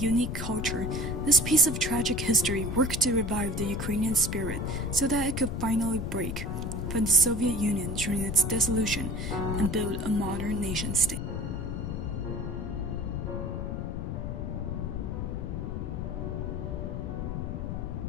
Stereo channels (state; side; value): noise; left; rumble, 3 dB below the sound